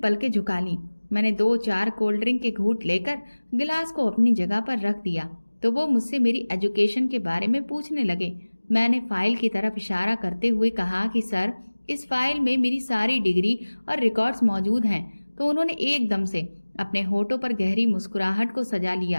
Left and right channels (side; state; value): both; inverted; correlation -1.00